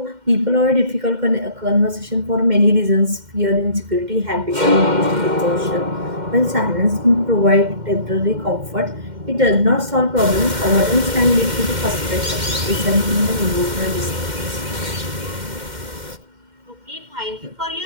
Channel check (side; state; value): left; late; 2.1 ms